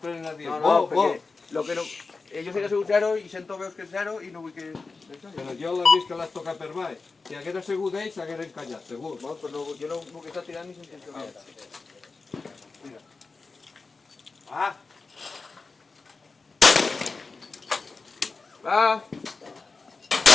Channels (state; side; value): quieter; right; 4.1 dB